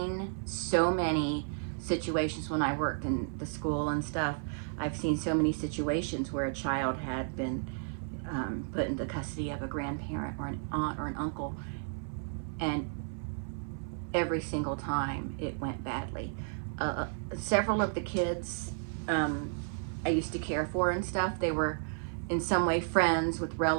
so many situations when I worked in the school and stuff. I've seen so many situations where a child had been put into custody of a grandparent or an aunt or an uncle, and every single time it went badly. Several of the kids I used to care for and stuff, they were in some way friends with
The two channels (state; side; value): silent; left; 56 dB below the other